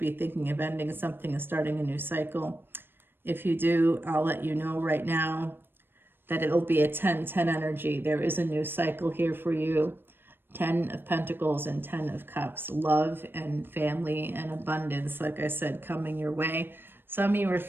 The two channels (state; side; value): late; left; 0.099 ms